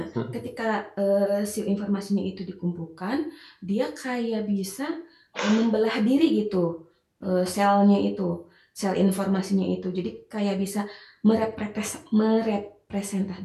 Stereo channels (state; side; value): identical; both; correlation 1.00